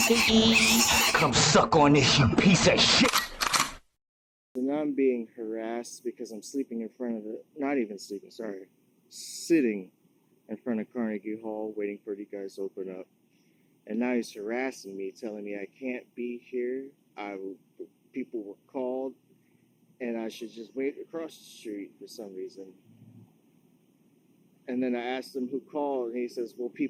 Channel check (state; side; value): identical; both; correlation 1.00